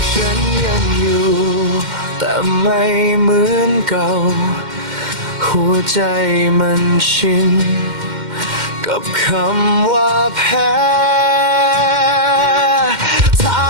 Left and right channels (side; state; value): left; late; 2.1 ms